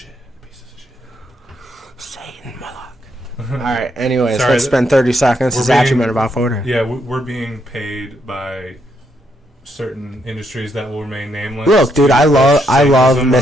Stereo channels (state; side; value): normal; both; correlation 0.77